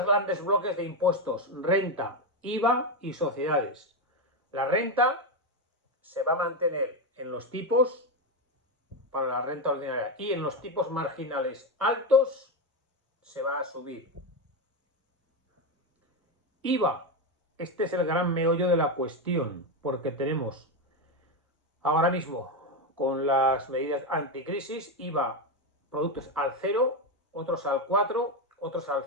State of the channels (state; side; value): normal; both; correlation 0.10